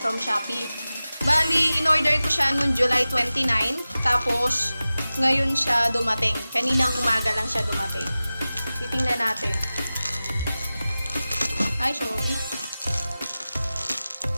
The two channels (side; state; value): both; inverted; correlation -0.96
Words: Shopee. Bali, in-order ko siya noong July 29. Tapos, ngayon siya dumating. Kaninang umaga lang siya dumating. Titingnan natin. Ay, sorry.